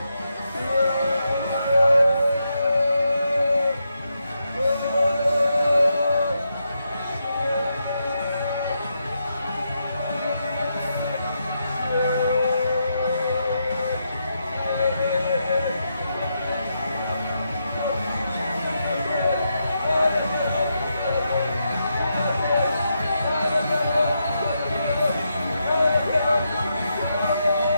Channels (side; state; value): both; inverted; correlation -0.83